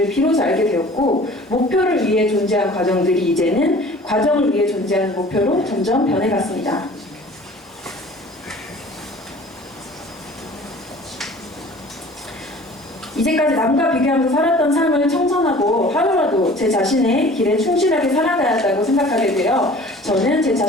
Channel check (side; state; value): both; normal; correlation 0.47